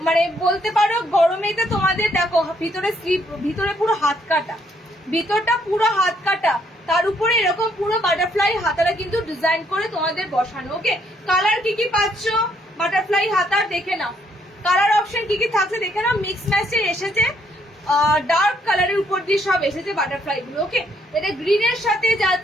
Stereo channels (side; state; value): both; normal; correlation 0.70